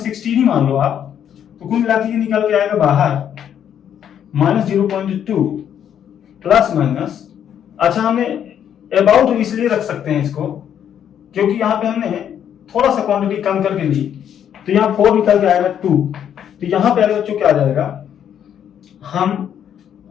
ही मान लो आप, तो कुल मिला के ये निकल के आएगा बाहर माइनस 0.2 प्लस माइनस, अच्छा हमने अबाउट इसलिए रख सकते हैं इसको क्योंकि यहाँ पे हमने थोड़ा सा क्वांटिटी कम करके ली, तो यहाँ 4 निकल के आएगा 2, तो यहाँ पे बच्चों क्या आ जाएगा, हम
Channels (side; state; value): right; quieter; 9.3 dB